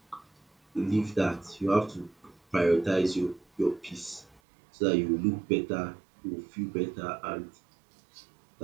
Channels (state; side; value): drops out; left; at 4.4 s